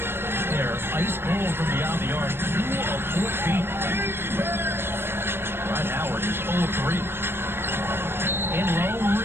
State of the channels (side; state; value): left; late; 0.11 ms